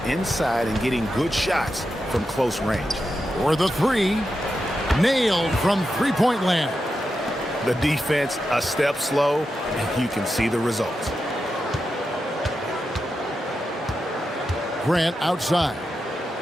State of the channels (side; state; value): both; normal; correlation 0.88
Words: inside and getting good shots from close range. For the 3, nailed from three-point land. The defense a step slow, and you can see the results. Grant outside.